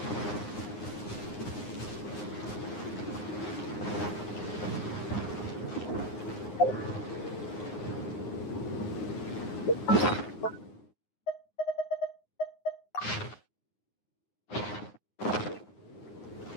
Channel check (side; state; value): right; late; 9.6 ms